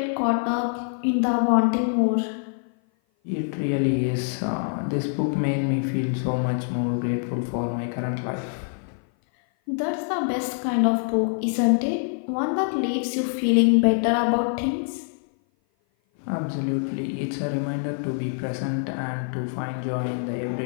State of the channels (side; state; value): right; silent; 56 dB below the other